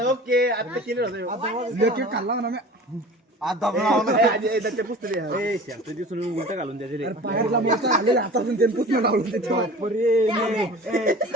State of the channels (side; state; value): both; normal; correlation 0.40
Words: ओके आता केलं खाल्ला ना आता दिसून उलट घालून द्यायचे हातातून ते पुसणं लावून